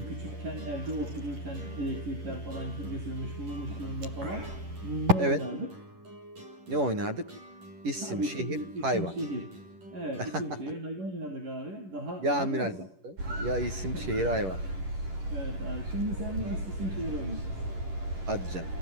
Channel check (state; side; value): late; left; 11 ms